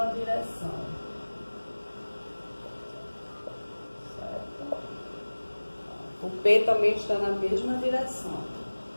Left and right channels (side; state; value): both; inverted; correlation -1.00